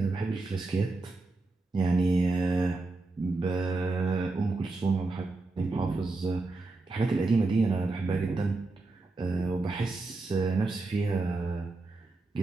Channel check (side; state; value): left; quieter; 3.4 dB